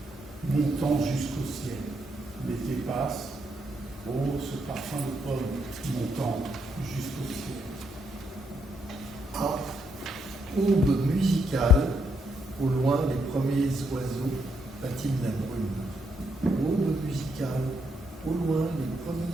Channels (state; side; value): normal; both; correlation 0.77